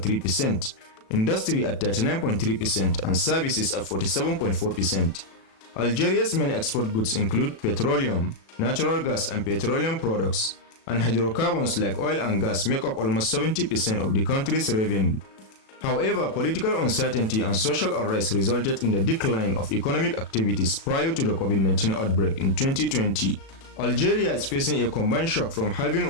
industry at 39.3%, and services at 47.4%. Algeria's main export goods include petroleum, natural gas and petroleum products, and hydrocarbons like oil and gas make up almost 70% of the country's revenue. However, political uncertainty and social unrest resulted in the decline of economic activities prior to the COVID-19 outbreak in 2020. Algeria is facing a combined shock from halving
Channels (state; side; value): late; right; 36 ms